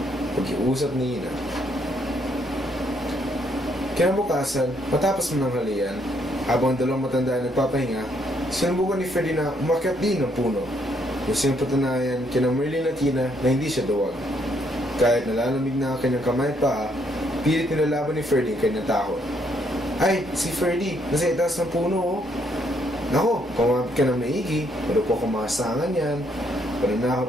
Pag-iusap ni Ina. Kinabukasan, matapos mo ng halian, habang dalawang matanda ay nagpapahinga, sinubukan ni Ferdy na umakyat din ng puno. Gusto niyang patunayan kina Merlin at Ina na hindi siya duwag. Kahit nalalamig na ang kanyang kamay pa, pilit nilalaban ni Ferdy ang kanyang takot. Ay, si Ferdy, nasa itaas ng puno, oh. Nako, kumapit ka ng maigi, pero po kumasangan yan.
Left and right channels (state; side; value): normal; both; correlation 0.71